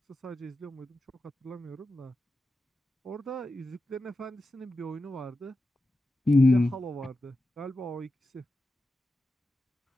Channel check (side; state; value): both; normal; correlation 0.91